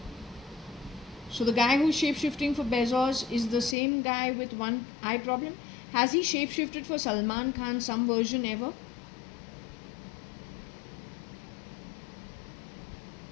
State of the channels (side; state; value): right; drops out; at 3.8 s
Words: So the guy who's shapeshifting for Bezos is the same guy with one eye problem. Has he shapeshifted for Salman Khan some version ever?